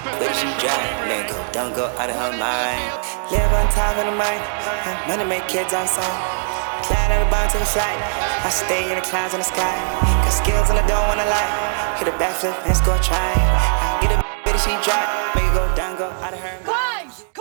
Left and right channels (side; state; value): left; silent; 62 dB below the other